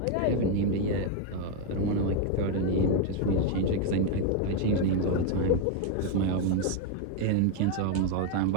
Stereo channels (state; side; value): different; both; correlation 0.01